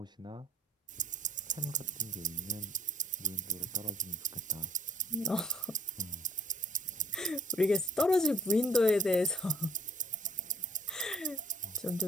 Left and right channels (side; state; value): both; normal; correlation 0.56